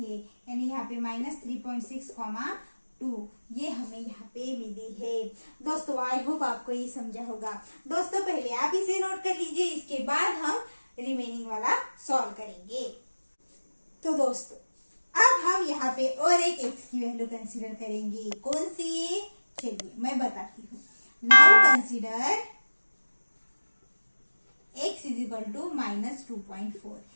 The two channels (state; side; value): inverted; both; correlation -1.00